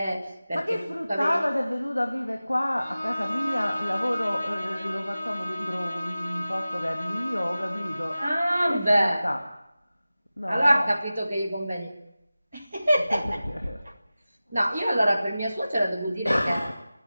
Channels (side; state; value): both; inverted; correlation -0.96